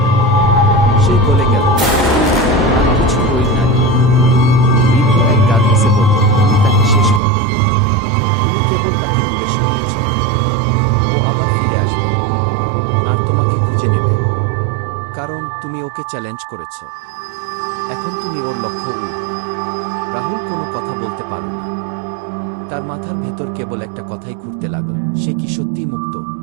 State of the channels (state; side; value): drops out; left; at 7.2 s